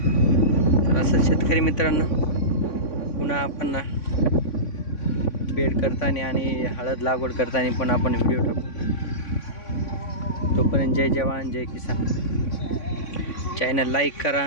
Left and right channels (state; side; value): late; right; 3.5 ms